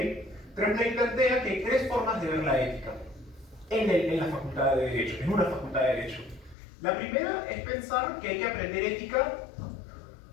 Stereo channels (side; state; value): right; drops out; at 6.6 s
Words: Tremblay plantea que hay tres formas de ver la ética en la facultad de Derecho, en una facultad de Derecho. La primera es pensar que hay que aprender ética